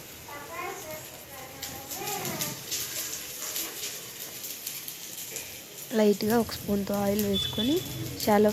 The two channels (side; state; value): both; identical; correlation 1.00